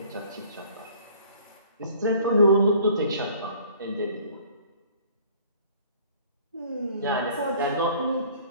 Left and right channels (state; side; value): inverted; both; correlation -0.53